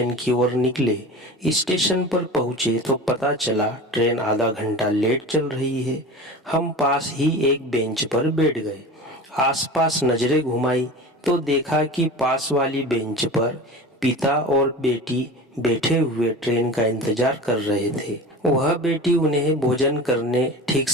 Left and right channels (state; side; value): normal; both; correlation 0.34